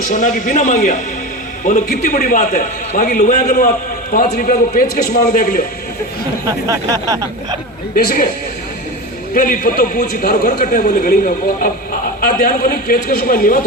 सोना की बिना मांगिया। बोलो कितनी बड़ी बात है। बाकी लोग अगर आप 5 रुपया को पेचकश मांग देख लो देख पहली पत्तो पूछी थारो घर कटे, बोले गली में। अब ध्यान को नहीं, पेचकश को नीवा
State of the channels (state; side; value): normal; both; correlation 0.26